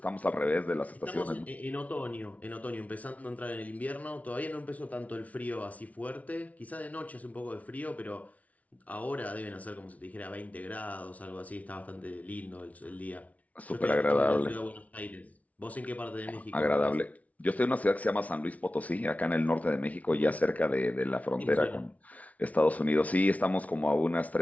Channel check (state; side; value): late; right; 0.069 ms